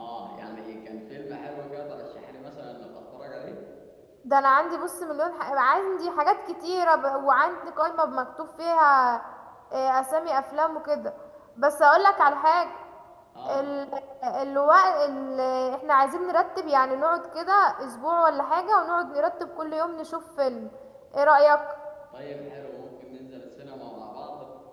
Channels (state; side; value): identical; both; correlation 1.00